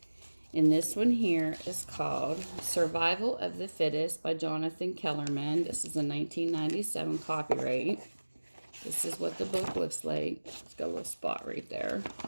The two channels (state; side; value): inverted; both; correlation -1.00